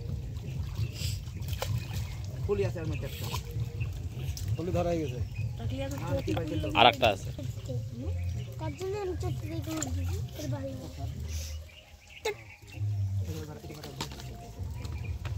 ফুলি আছে আর মধ্যে ফুলি ধরা হয়ে গেছে টকলিয়া তো আর একটা আছে কতদিন আমি চটকে দেখে এর বাড়ি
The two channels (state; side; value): identical; both; correlation 1.00